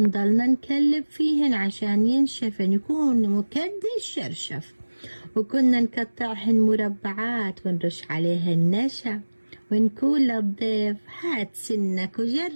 نكلب فيهن عشان ينشفن يكون مكدي الشرشف. وكنا نقطعهن مربعات ونرش عليهن نشا ونقول للضيف هات سنك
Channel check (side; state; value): both; inverted; correlation -1.00